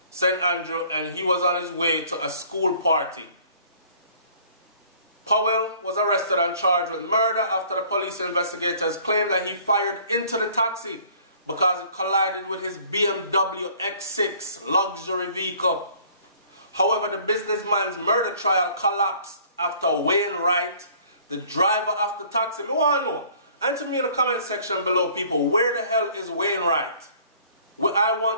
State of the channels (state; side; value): inverted; both; correlation -0.55